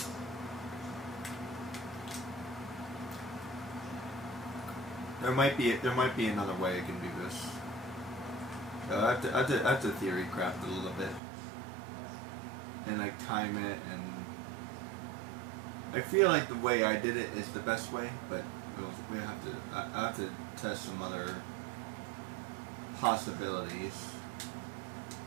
There might be another way I can do this. I have to theory craft a little bit, and like time it, and I feel like the way I did it is the best way, but I have to test some other possibilities.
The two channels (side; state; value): left; drops out; at 11.2 s